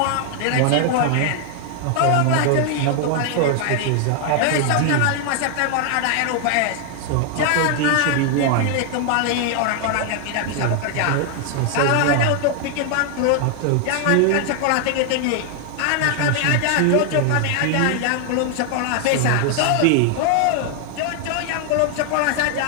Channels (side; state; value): both; different; correlation 0.00